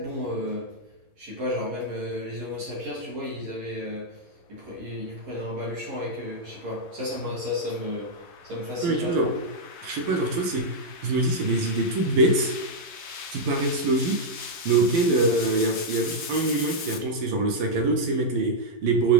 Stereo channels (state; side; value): late; left; 11 ms